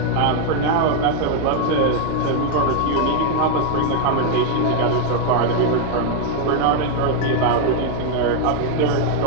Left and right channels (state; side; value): different; both; correlation 0.00